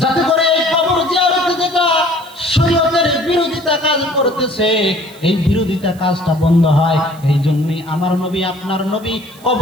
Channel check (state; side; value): noise; right; hiss, 24 dB below the sound